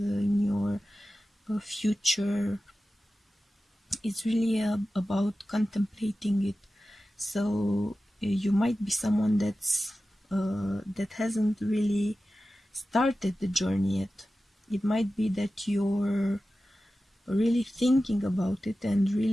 your future. It's really about contemplating it. So you might be someone that hasn't really started the journey yet. It might be that you're really thinking about it and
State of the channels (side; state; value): both; normal; correlation 0.94